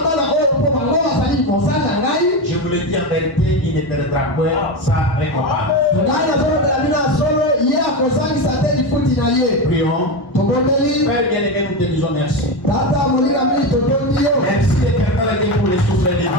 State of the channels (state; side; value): late; right; 1.1 ms